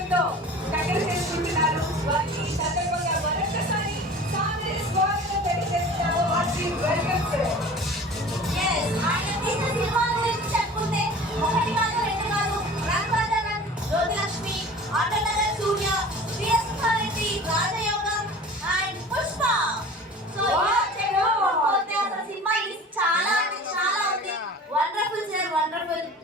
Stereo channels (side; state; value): both; normal; correlation 0.41